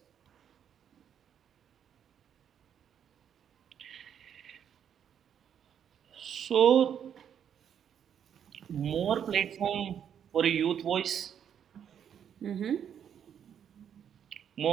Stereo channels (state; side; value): quieter; left; 8.7 dB